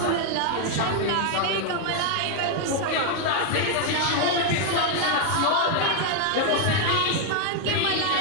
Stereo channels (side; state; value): both; different; correlation 0.00